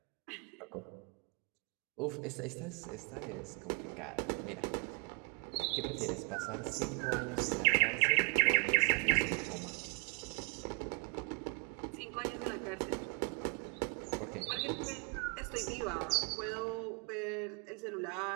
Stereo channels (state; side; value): quieter; left; 34.8 dB